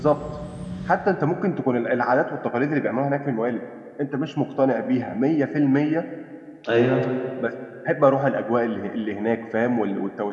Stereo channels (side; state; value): both; identical; correlation 1.00